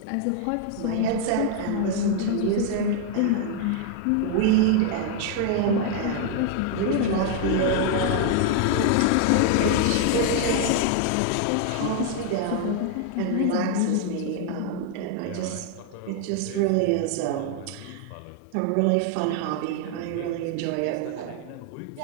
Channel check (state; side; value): different; both; correlation 0.00